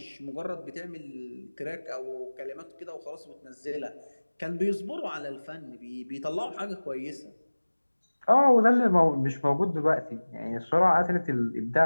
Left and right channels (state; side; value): inverted; both; correlation -1.00